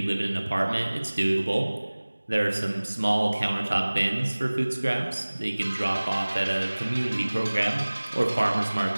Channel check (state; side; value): inverted; both; correlation -1.00